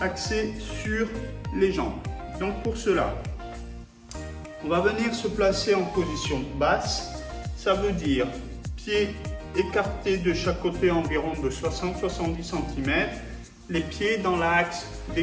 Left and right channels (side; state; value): both; identical; correlation 1.00